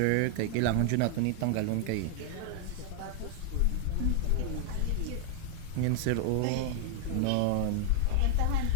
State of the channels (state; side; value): different; both; correlation 0.00